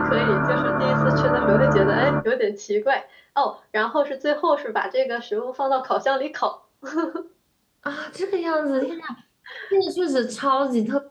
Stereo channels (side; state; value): both; identical; correlation 1.00